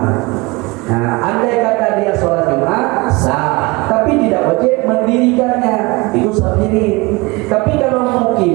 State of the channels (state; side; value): quieter; left; 24.3 dB